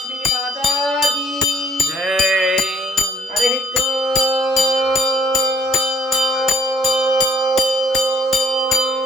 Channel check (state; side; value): normal; both; correlation 0.61